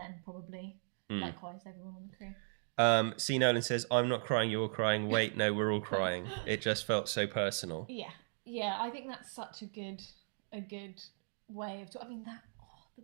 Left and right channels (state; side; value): silent; left; digital silence